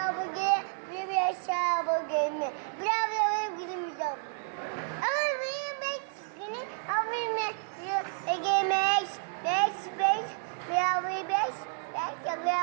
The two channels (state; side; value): silent; left; digital silence